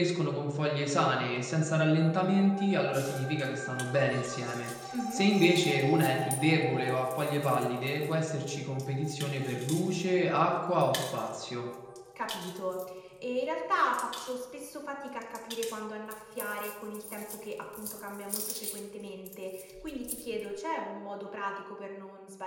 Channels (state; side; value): identical; both; correlation 1.00